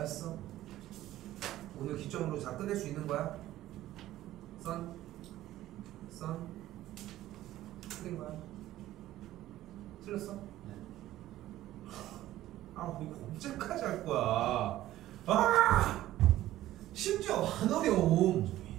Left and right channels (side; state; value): left; quieter; 14.5 dB